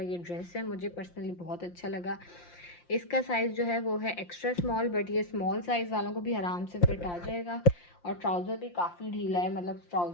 ये ड्रेस है। मुझे पर्सनली बहुत अच्छा लगा। इसका साइज़ जो है वो है एक्स्ट्रा स्मॉल, बट ये स्मॉल साइज़ वालों को भी आराम से फिट आ जाएगा। और ट्राउज़र भी काफ़ी ढीला है, मतलब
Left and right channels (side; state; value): right; late; 5.7 ms